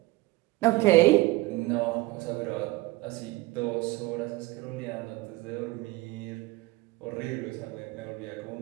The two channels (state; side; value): quieter; left; 20.7 dB